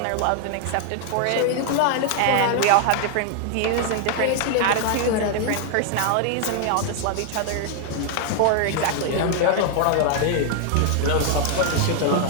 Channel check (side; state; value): both; different; correlation 0.00